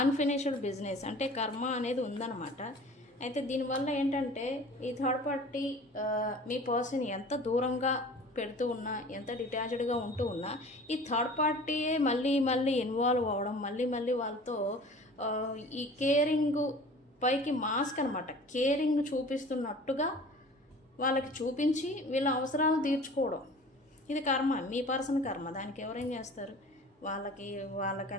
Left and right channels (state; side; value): normal; both; correlation 0.43